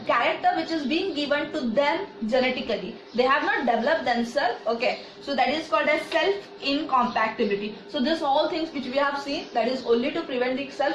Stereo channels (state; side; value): identical; both; correlation 1.00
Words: character which is being given to them genetically. They have not developed themselves. Okay. So that is called as self-incompatibility. So this all things which we have seen, that is only to prevent the